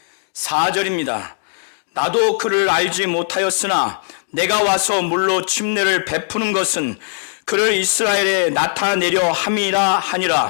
34절입니다. 나도 그를 알지 못하였으나 내가 와서 물로 침례를 베푸는 것은 그를 이스라엘에 나타내려 함이라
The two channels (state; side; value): silent; right; digital silence